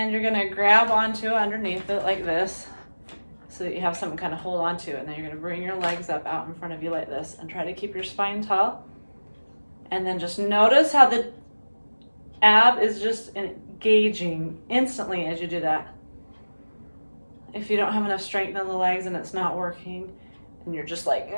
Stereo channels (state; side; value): inverted; both; correlation -1.00